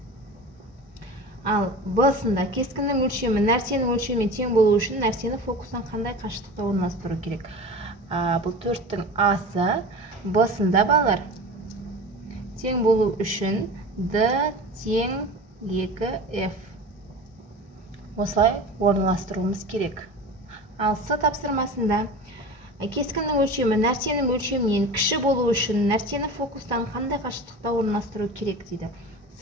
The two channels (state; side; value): normal; both; correlation 0.34